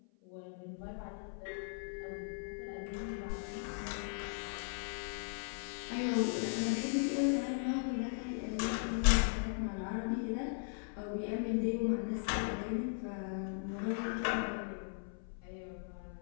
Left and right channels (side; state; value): right; silent; 52 dB below the other